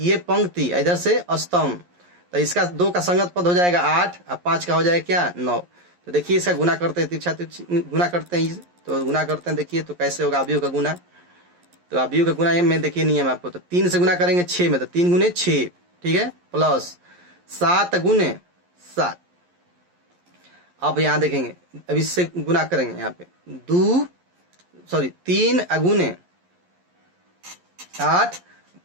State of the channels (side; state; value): left; late; 11 ms